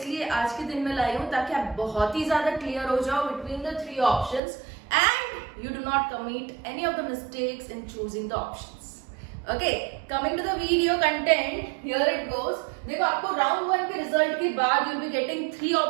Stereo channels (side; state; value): left; drops out; at 4.4 s